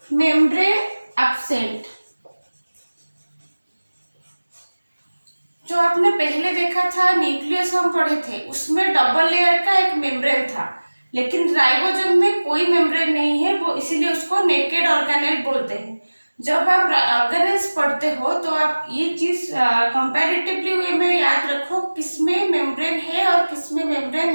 membrane absent. जो आपने पहले देखा था न्यूक्लियस हम पढ़े थे, उसमें डबल लेयर का एक मेम्ब्रेन था, लेकिन राइबोसोम में कोई मेम्ब्रेन नहीं है, वो इसीलिए उसको नेकेड ऑर्गेनेल बोलते हैं। जब आप ऑर्गेनेल्स पढ़ते हो तो आप ये चीज कंपैरेटिवली वे में याद रखो, किसमें मेम्ब्रेन है और किसमें मेम्ब्रेन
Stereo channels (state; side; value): inverted; both; correlation -1.00